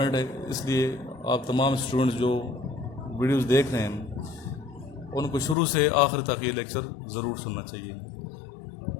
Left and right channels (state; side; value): drops out; right; at 5.6 s